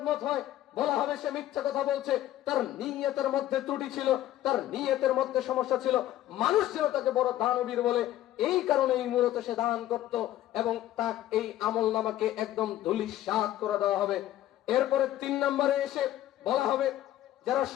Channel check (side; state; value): right; quieter; 13.6 dB